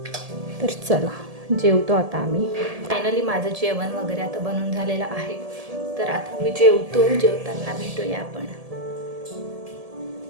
तर चला जेवतो आता आम्ही. फायनली माझं जेवण वगैरे आता बनवून झालेलं आहे. तर आता मी जेवतो. जेवताना भेटूया आपण.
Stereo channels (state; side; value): late; left; 1.7 ms